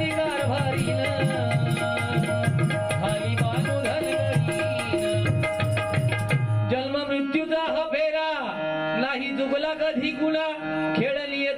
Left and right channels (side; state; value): both; identical; correlation 1.00